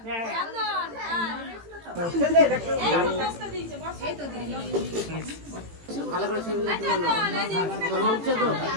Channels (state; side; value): late; left; 18 ms